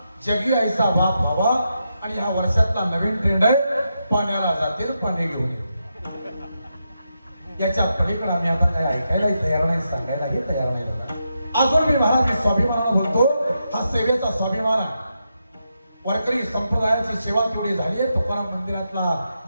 जगी ऐसा बाप व्हावा. आणि ह्या वर्षातला नवीन ट्रेंड आहे, पाण्याला जातील पाणी घेऊन ये. याच्या पलीकडे आम्ही आता काही ऐकायलाही तयार नाही, सांगायलाही तयार नाही. अजून मी महाराज मी स्वाभिमानानं बोलतो, हा सेवेचा स्वाभिमान आहे. वारकरी संप्रदायाची सेवा तेवढी झाली आहे. तुकाराम मंदिरातला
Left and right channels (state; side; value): inverted; both; correlation -0.85